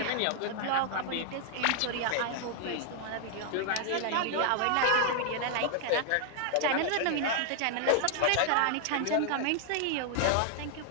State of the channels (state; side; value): different; both; correlation 0.00